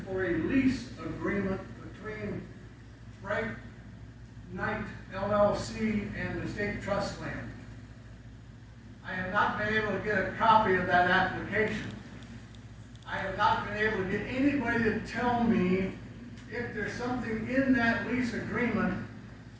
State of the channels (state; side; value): identical; both; correlation 1.00